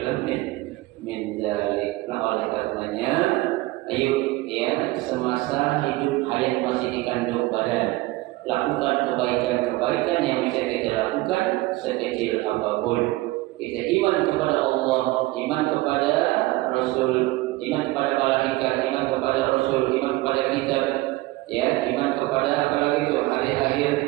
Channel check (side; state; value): left; quieter; 19.6 dB